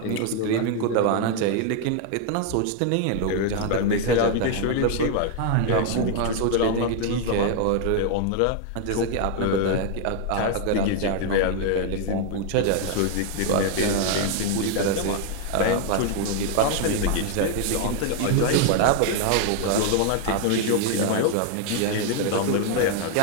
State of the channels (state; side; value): different; both; correlation 0.00